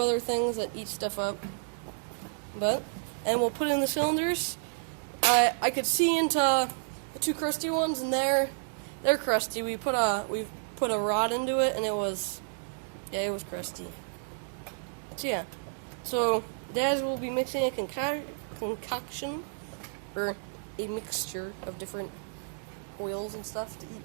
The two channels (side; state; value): left; silent; digital silence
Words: things that eat stuff up. And we'll put in the cylinders. I could see into the two crusty ones, and they're crusty. We put a rod into it, and it was crusty. So yeah. So Daz will be mixing a concoction, or a mixture of different oils and stuff to eat